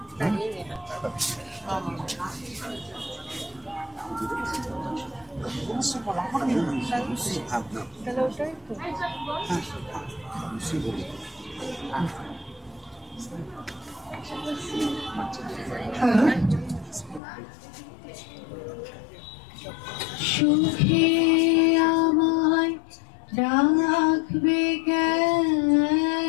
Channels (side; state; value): right; drops out; at 17.2 s